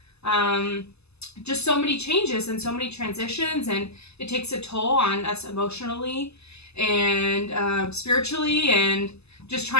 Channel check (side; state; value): right; late; 0.79 ms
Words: Just so many changes and so many transitions, and it takes a toll on us emotionally and spiritually, and just